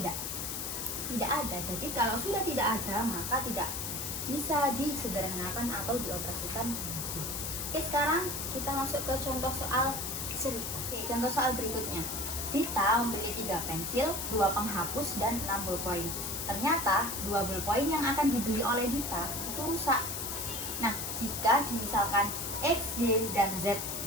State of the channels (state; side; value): noise; left; hiss, 4 dB below the sound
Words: Tidak ada. Jadi kalau sudah tidak ada, maka tidak bisa disederhanakan atau dioperasikan lagi. Oke, sekarang kita masuk ke contoh soal seri. Oke, contoh soal berikutnya. Dita membeli 3 pensil, 2 penghapus, dan 6 ballpoint. Ternyata 2 ballpoint yang akan dibeli oleh Dita itu rusak. Nah, jika misalkan X, Y, dan Z